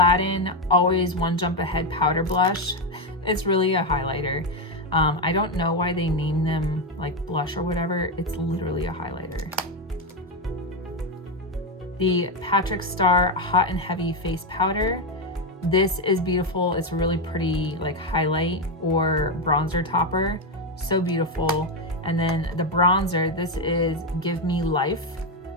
Always One Jump Ahead Powder Blush. It's really a highlighter. I don't know why they name them like blush or whatever. It's literally a highlighter. The Patrick Star Hot and Heavy Face Powder. This is beautiful. It's a really pretty like highlight or bronzer topper. So beautiful. And then the bronzer, this is Give Me Life.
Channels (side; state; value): both; normal; correlation 0.07